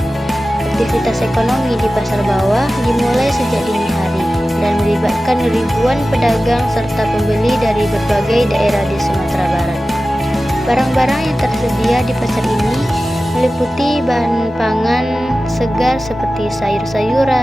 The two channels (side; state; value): both; normal; correlation 0.95